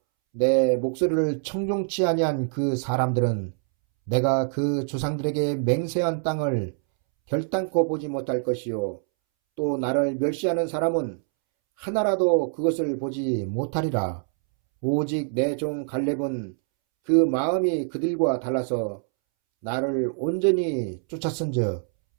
내 목소리를 청종치 아니한 그 사람들은 내가 그 조상들에게 맹세한 땅을 결단코 보지 못할 것이요 또 나를 멸시하는 사람은 하나라도 그것을 보지 못하리라. 오직 내 종 갈렙은 그 마음이 그들과 달라서 나를 온전히 쫓았은즉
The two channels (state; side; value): silent; left; 62 dB below the other